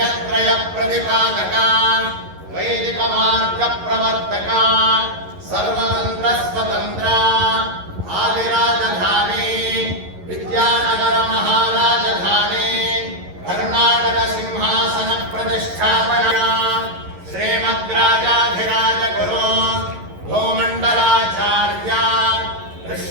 प्रतिपादका वैदिक मार्ग प्रवर्तका सर्वतंत्र स्वतंत्रा आदिराजधानी विद्यानगर महाराजधानी कर्नाटक सिंहासन प्रतिष्ठापना श्रीमद्राजाधिराज गुरु भूमंडलाचार्य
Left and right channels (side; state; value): left; late; 11 ms